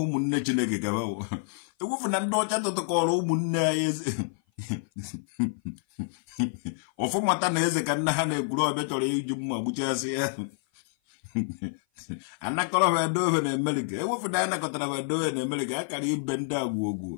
munne Chineke ka bawo ewufu na ndo cha to ko munne ayeze ofu mata na eze ka nna ha na egwuru obe choro iju mma gbuchasi ya anakoro be do na America ewufu na anakotara be do na America akara ibe ndị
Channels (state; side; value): silent; right; 55 dB below the other